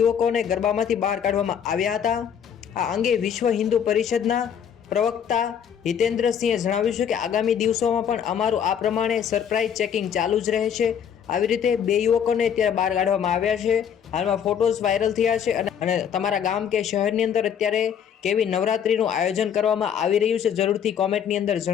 ગરબામાંથી બહાર કાઢવામાં આવ્યા હતા. આ અંગે વિશ્વ હિન્દુ પરિષદના પ્રવક્તા હિતેન્દ્રસિંહે જણાવ્યું છે કે આગામી દિવસોમાં પણ અમારું આ પ્રમાણે સરપ્રાઇઝ ચેકિંગ ચાલુ જ રહેશે. આવી રીતે 2 યુવકોને અત્યારે બહાર કાઢવામાં આવ્યા છે. હાલમાં ફોટોઝ વાયરલ થયા છે અને તમારા ગામ કે શહેરની અંદર અત્યારે કેવી નવરાત્રીનું આયોજન કરવામાં આવી રહ્યું છે જરૂરથી કોમેન્ટની અંદર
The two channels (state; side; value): quieter; right; 8.3 dB